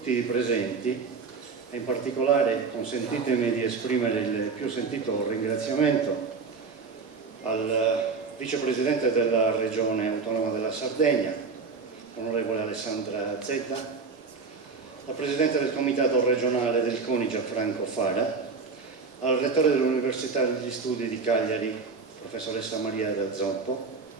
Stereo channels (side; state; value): left; quieter; 4.8 dB